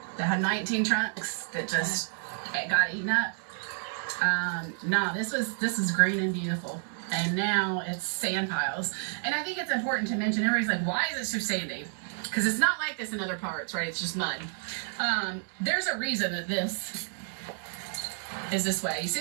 that had 19 trunks that just got eaten up. No, this is green and beautiful. And now it's sand piles. And I think it's important to mention, everybody's like, why is it so sandy? Because it's not like this in other parts, right? It's just mud. There's a reason that this is this way. You see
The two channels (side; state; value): left; silent; digital silence